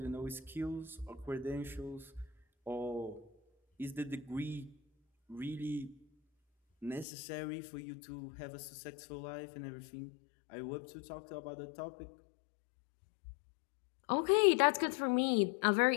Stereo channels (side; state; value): right; drops out; at 7.1 s